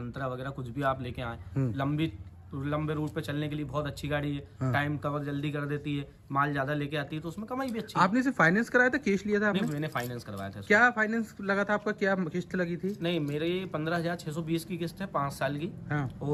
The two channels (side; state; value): both; identical; correlation 1.00